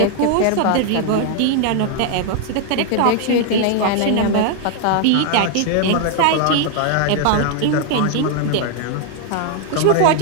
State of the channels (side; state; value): both; different; correlation 0.00